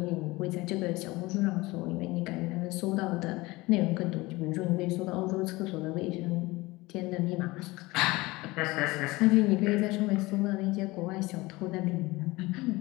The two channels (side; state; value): right; quieter; 21.4 dB